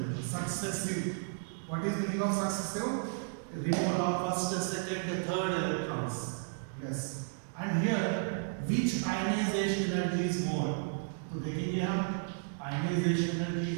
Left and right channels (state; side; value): silent; left; digital silence